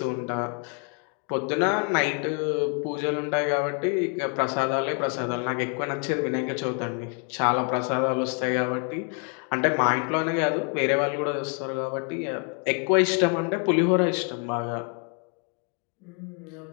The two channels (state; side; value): quieter; right; 38.1 dB